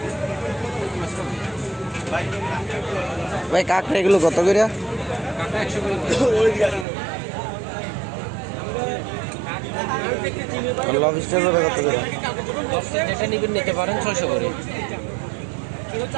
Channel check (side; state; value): left; drops out; at 6.9 s